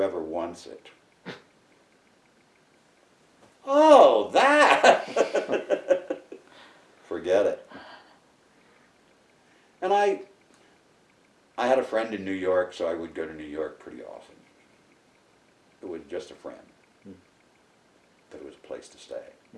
wants it." Oh, that! Forget it. And I had a friend in New York, so I would go to New York pretty often. It was just a friend. But it was a place to stay.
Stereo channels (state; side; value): identical; both; correlation 1.00